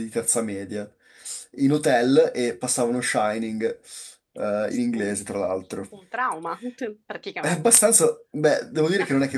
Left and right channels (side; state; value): both; identical; correlation 1.00